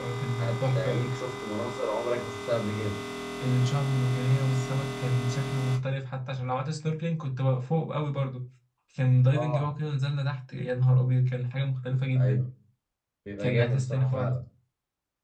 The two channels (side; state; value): both; identical; correlation 1.00